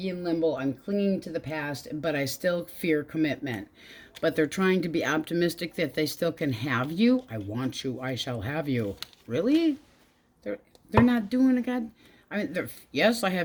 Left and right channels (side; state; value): both; identical; correlation 1.00